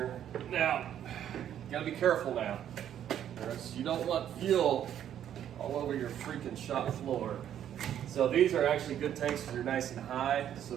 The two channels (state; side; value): quieter; left; 10.3 dB